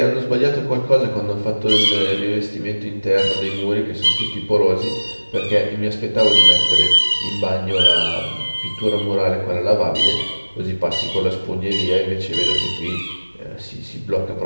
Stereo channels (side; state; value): both; inverted; correlation -1.00